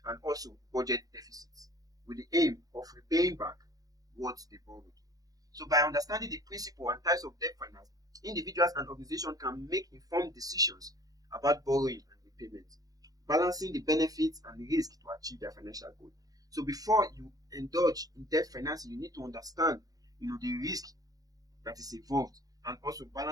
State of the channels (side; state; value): left; late; 0.18 ms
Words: and also budget deficits with the aim of repaying back what they borrowed. So by understanding the principle and types of debt finance, individuals and organizations can make informed decisions about borrowing and repayment, balancing the benefits and the risk to achieve their financial goal. So before you indulge in debt financing, you need to understand, the risk that is involved and also